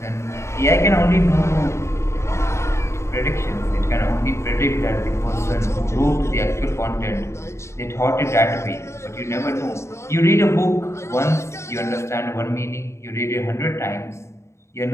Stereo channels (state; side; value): late; right; 0.13 ms